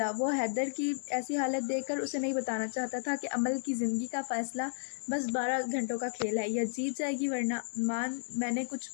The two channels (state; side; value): silent; right; digital silence